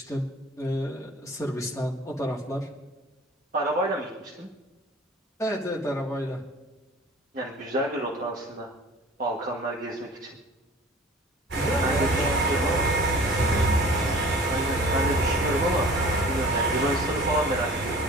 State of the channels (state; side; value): normal; both; correlation 0.45